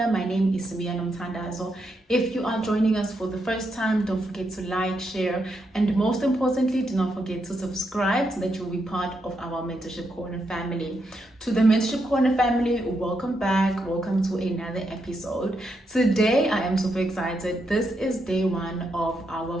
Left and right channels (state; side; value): normal; both; correlation 0.81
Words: My name is Samia Nomthandazo. If you are joining us for the first time, don't forget to like, share, and most importantly, do not forget to subscribe so that you'll be part of our Mentorship Corner family. To the Mentorship Corner family, welcome back. Welcome to another episode. Today, I am super excited. This is day one of